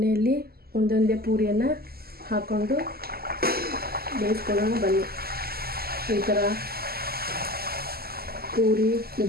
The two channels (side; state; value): left; late; 0.45 ms